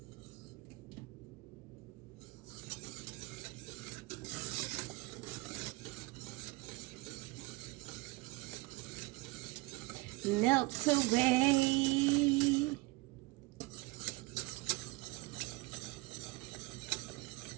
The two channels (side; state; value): left; quieter; 24.0 dB